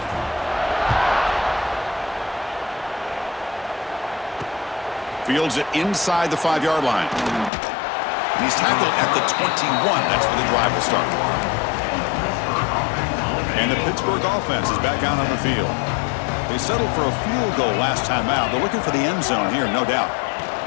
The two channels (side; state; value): right; drops out; at 7.5 s